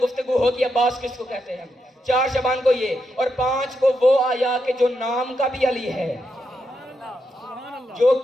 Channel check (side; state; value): both; normal; correlation 0.83